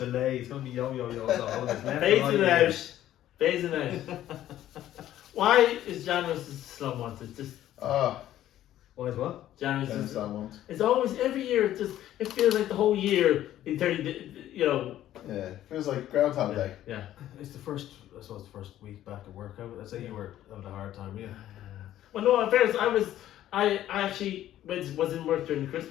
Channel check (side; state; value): right; quieter; 12.7 dB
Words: It's going to be yo. Phasing out. Why is January slow month? It's just. Why is what? January's just slow month. It's always every year. It feels like the whole year in 30. Yeah, it feels like Groundhog Day. Yeah. It's the first week back at work. I'd say you were having a hard time, yeah. Well, no, in fairness, I actually was in work during